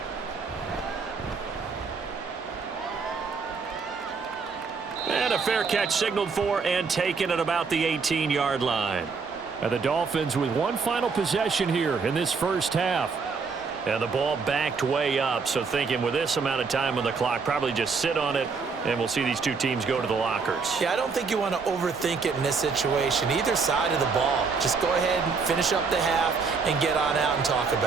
And a fair catch signaled for and taken at about the 18-yard line. And the Dolphins with one final possession here in this first half. And the ball backed way up, so thinking with this amount of time on the clock, probably just sit on it, and we'll see these two teams go to the lockers. Yeah, I don't think you want to overthink it in this situation. Either side of the ball. Just go ahead and finish up the half and get on out and talk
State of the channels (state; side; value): quieter; left; 5.0 dB